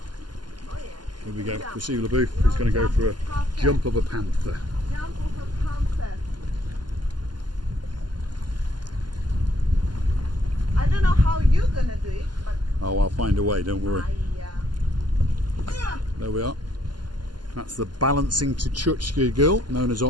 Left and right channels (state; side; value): late; left; 0.71 ms